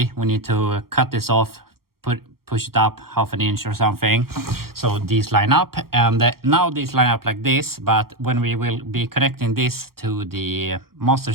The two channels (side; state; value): left; late; 0.94 ms